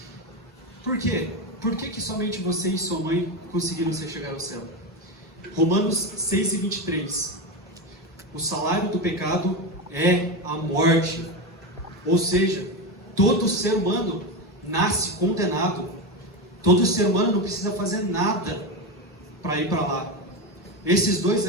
Por quê? Por que somente você e sua mãe conseguiram chegar ao céu? Romanos 6:23. O salário do pecado é a morte. Ou seja, todo ser humano nasce condenado. Todo ser humano não precisa fazer nada para ir para lá. Esses dois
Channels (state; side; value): normal; both; correlation 0.15